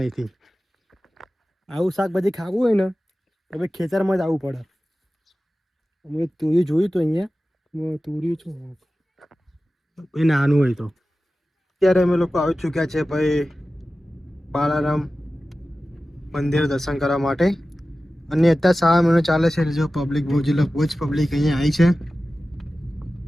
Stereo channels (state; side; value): normal; both; correlation 0.95